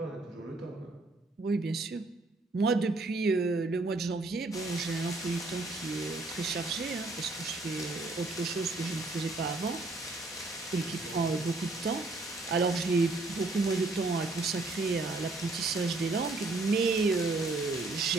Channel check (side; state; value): left; quieter; 3.2 dB